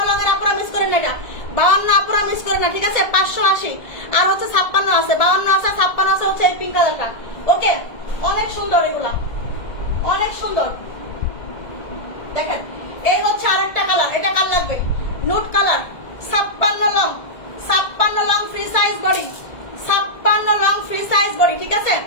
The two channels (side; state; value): right; late; 1.7 ms